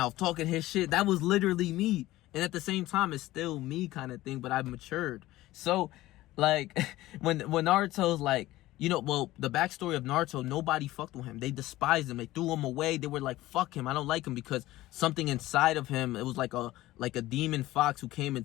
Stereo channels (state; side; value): quieter; right; 16.8 dB